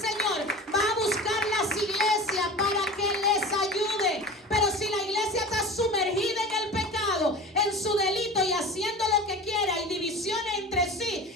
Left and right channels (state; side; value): normal; both; correlation 0.35